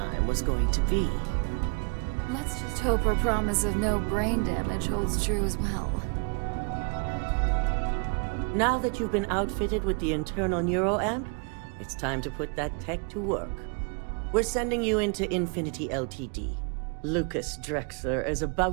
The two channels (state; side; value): quieter; left; 37.9 dB